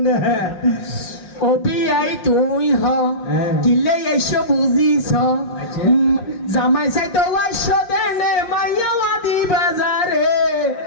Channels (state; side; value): late; right; 5.6 ms